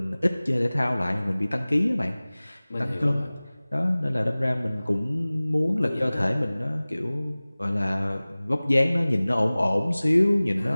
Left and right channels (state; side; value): inverted; both; correlation -0.99